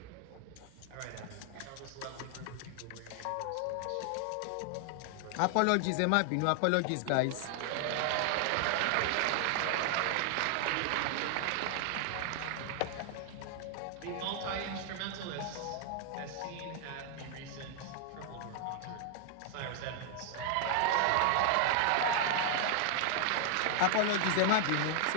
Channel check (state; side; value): different; both; correlation 0.00